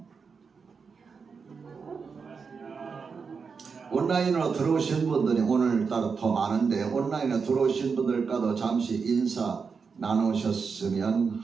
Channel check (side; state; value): left; quieter; 5.4 dB